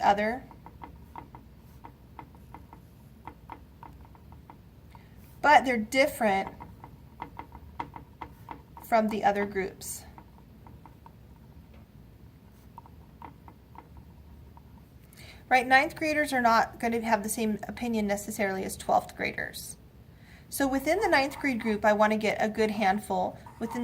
but they're different from the other groups. Right, 9th graders are not going to have the same opinion necessarily as 12th graders. So within the 9th grade group, I want to get a good handful, within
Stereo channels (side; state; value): both; identical; correlation 1.00